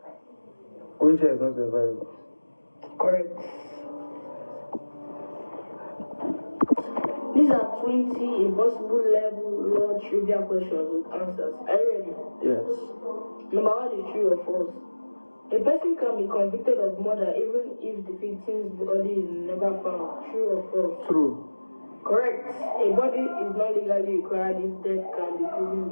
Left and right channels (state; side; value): inverted; both; correlation -1.00